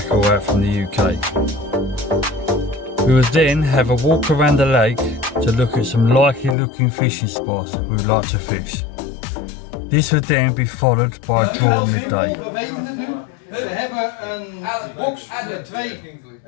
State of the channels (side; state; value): right; drops out; at 6.6 s